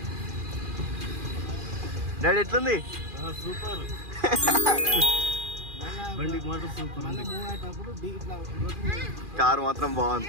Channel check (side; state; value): left; late; 2.4 ms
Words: డాడీ ఎట్లుంది? సూపర్. బండికి మాత్రం సూపర్. కారు మాత్రం బాగుంది.